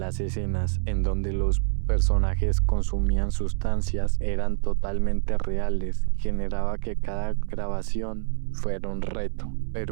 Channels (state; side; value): silent; left; 61 dB below the other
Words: escenas en donde los personajes consumían sustancias eran totalmente reales, generaba que cada grabación fuera un reto.